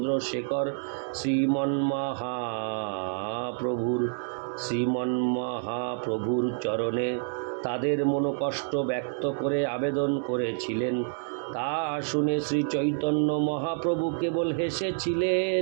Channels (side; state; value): left; silent; digital silence